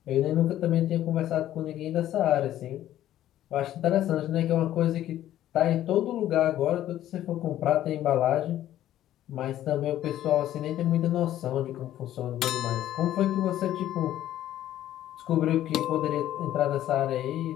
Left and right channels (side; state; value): right; quieter; 12.7 dB